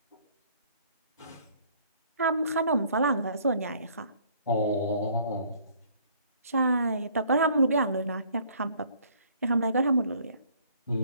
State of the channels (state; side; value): inverted; both; correlation -0.59